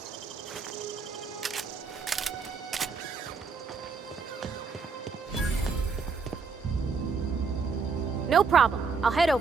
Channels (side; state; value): left; quieter; 5.0 dB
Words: No problem. I'll head